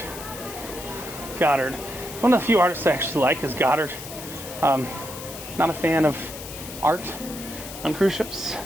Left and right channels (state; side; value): noise; left; hiss, 12 dB below the sound